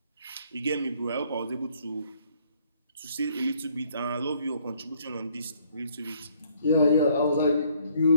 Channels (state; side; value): inverted; both; correlation -0.64